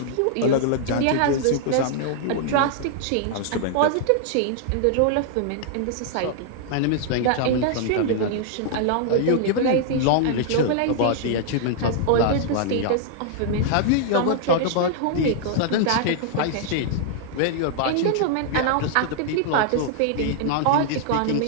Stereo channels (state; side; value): different; both; correlation -0.01